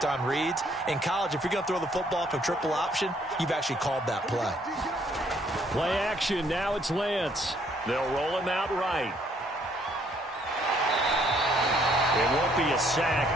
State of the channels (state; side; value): normal; both; correlation 0.66